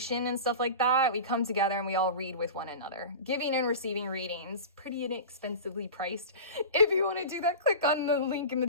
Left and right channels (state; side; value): inverted; both; correlation -0.31